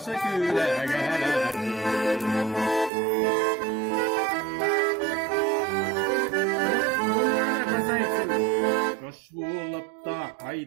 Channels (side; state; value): left; drops out; at 2.9 s